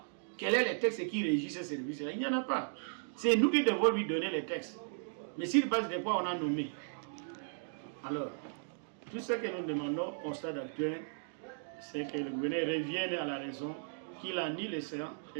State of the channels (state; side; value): silent; left; digital silence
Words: Quel est le texte qui régit ce service-là? Il n'y en a pas. C'est nous qui devons lui donner les textes. Mais sur base de quoi on a nommé? Alors, tout ce que nous demandons au stade actuel, c'est que le gouverneur revienne à la raison, qu'il annule les séances